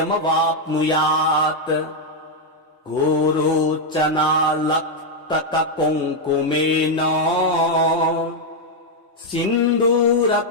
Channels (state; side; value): normal; both; correlation 0.00